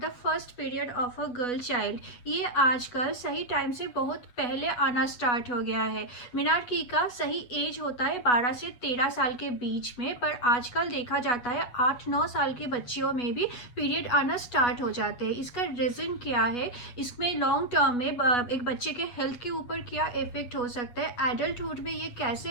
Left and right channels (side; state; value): right; late; 8.2 ms